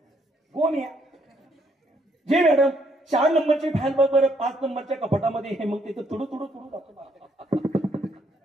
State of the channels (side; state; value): both; normal; correlation 0.70